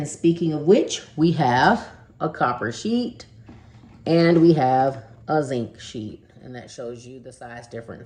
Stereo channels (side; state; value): both; identical; correlation 1.00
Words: speaking of which, we have a copper sheet and we have a zinc sheet, and that shows you the size